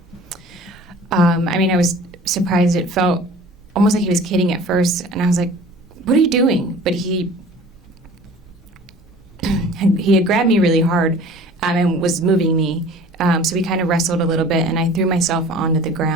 I was surprised. It felt almost like he was kidding at first, and I was like, "What are you doing?" But he had grabbed me really hard and was moving me. So we kind of wrestled a little bit, and I threw myself onto the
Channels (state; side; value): normal; both; correlation 0.45